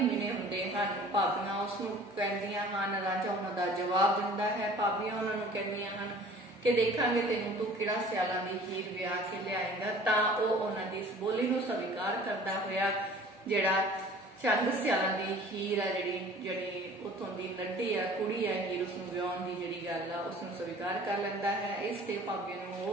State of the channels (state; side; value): normal; both; correlation 0.47